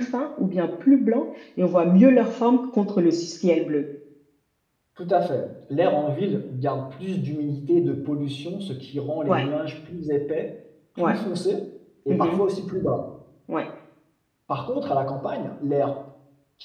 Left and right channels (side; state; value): both; identical; correlation 1.00